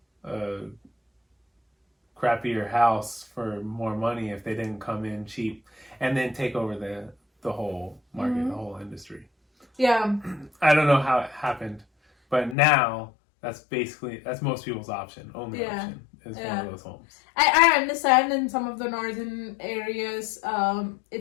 crappier house for more money if they didn't come in cheap and then take over the whole market, the whole industry. Yeah. I don't know how it happened, but now that's most people's option. Only option is one of those homes. I understand in some of the northern areas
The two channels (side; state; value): right; drops out; at 12.6 s